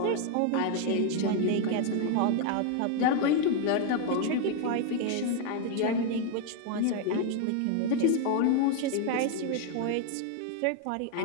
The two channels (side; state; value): both; different; correlation 0.00